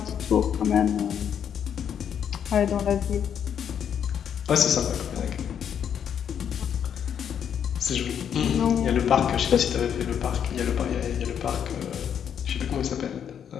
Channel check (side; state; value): right; quieter; 8.5 dB